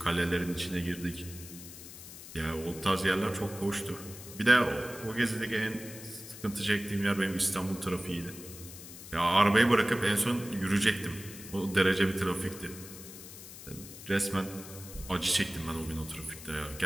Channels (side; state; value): left; noise; hiss, 14 dB below the sound